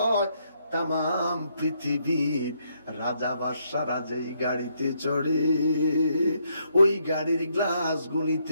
তাম পৃথিবীর রাজা বাদশারা যেই গাড়িতে চড়ে ওই গাড়ির গ্লাস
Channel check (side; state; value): both; inverted; correlation -0.74